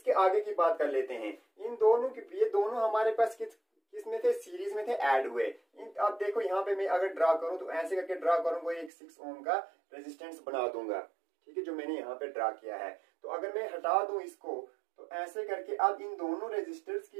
आगे की बात कर लेते हैं, इन दोनों की, ये दोनों हमारे पास किस में थे, सीरीज में थे, ऐड हुए। अब देखो यहाँ पे मैं अगर ड्रा करूं तो ऐसे करके ड्रा करूंगा, एक 6 ओम का रेजिस्टेंस बना दूंगा, ठीक है, जो मैंने यहाँ पे ड्रा किया है। तो अगर मैं हटा दूं इसको, तो ऐसे करके अब इन दोनों रेजिस्टर्स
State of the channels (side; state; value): left; drops out; at 8.9 s